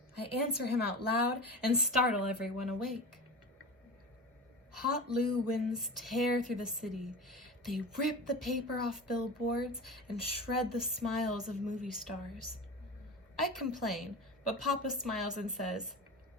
I answer him out loud and startle everyone awake. Hot Loo winds tear through the city. They rip the paper off billboards and shred the smiles of movie stars. I complain, but Papa smiles and says,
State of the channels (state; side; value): normal; both; correlation 0.30